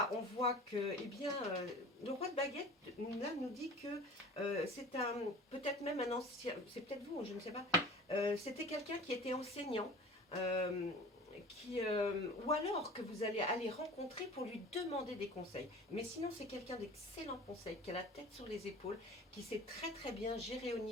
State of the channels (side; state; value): both; normal; correlation 0.41